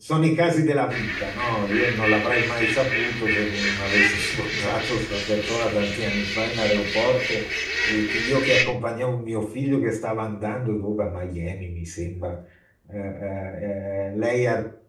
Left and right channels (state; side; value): identical; both; correlation 1.00